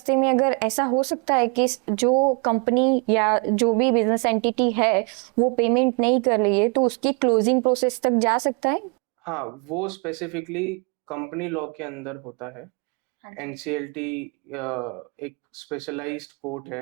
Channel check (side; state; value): left; quieter; 35.1 dB